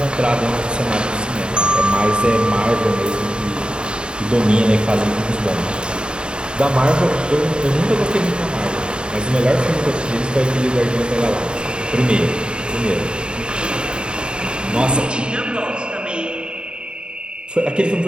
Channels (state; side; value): late; left; 0.051 ms